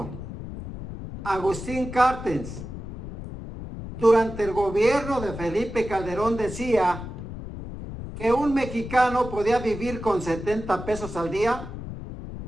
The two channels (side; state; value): left; noise; rumble, 10 dB below the sound